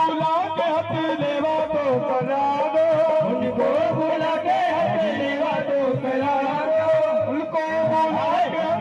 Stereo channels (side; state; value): both; identical; correlation 1.00